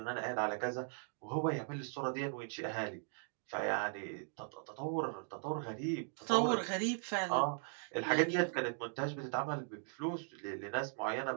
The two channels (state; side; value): silent; left; 52 dB below the other